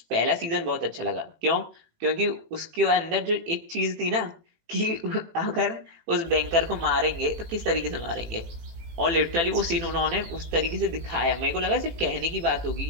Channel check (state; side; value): late; left; 18 ms